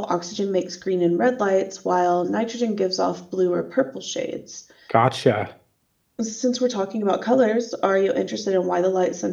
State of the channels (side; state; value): both; identical; correlation 1.00